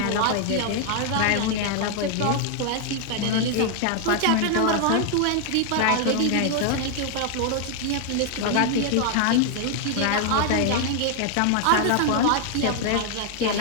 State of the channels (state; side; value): different; both; correlation 0.00